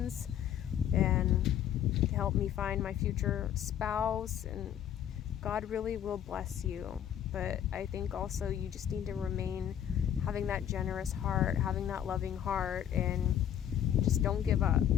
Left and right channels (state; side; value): quieter; right; 10.0 dB